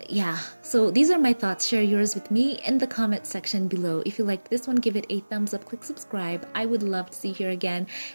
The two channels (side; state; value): both; inverted; correlation -1.00